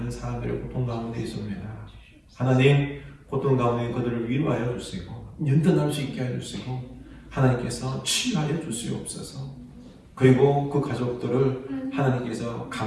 사람들의 고통 가운데 있습니다. 하나님, 고통 가운데 그들을 위로하여 주시고 연단할 수 있게 해주시고 하나님께서 치유하여 주시옵소서. 그리고 그 가족들을 하나님께서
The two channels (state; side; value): identical; both; correlation 1.00